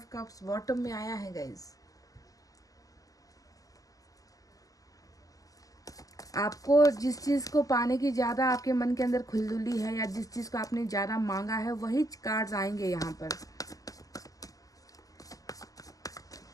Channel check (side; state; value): right; late; 0.17 ms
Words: कप्स बॉटम में आया है गाइज। आपको जिस चीज़ को पाने की ज़्यादा आपके मन के अंदर खुलदुली है, या जिस चीज़ को आपने ज़्यादा मांगा है, वही कार्ड्स आएंगे यहाँ पर।